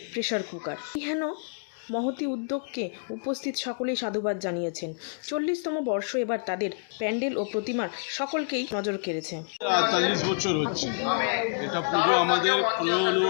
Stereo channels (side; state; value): right; silent; digital silence